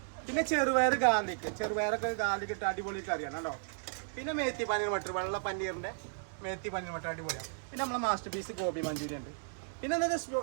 പിന്നെ ചെറുപയറൊക്കെ ഗാർലിക് ഇട്ട് അടിപൊളി കറിയാണ് കേട്ടോ. പിന്നെ മേത്തി പനീർ മട്ടർ, വെള്ള പന്നീറിൻ്റെ മേത്തി പനീർ മട്ടർ അടിപൊളിയാണ്. പിന്നെ നമ്മളെ മാസ്റ്റർ പീസ് ഗോബി മഞ്ചൂരി ഉണ്ട്. പിന്നെ എന്താ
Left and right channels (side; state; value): left; silent; digital silence